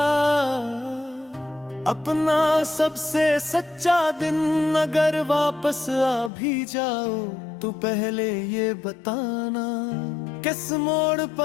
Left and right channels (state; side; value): drops out; right; at 6.3 s